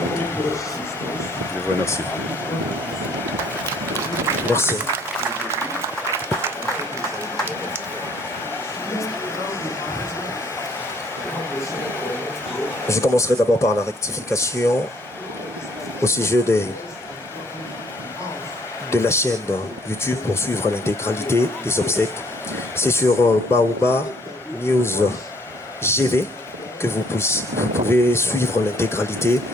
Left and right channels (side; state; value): both; normal; correlation 0.62